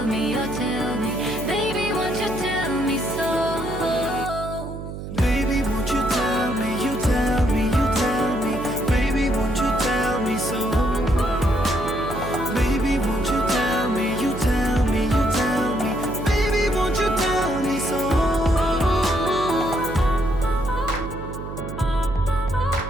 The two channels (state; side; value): noise; right; hum, 9 dB below the sound